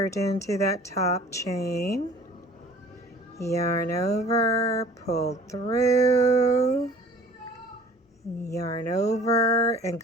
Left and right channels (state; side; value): normal; both; correlation 0.49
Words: into that top chain. Yarn over, pull through. Yarn over and